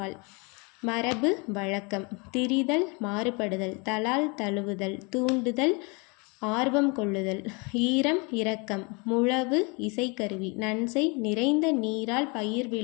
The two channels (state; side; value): quieter; right; 30.6 dB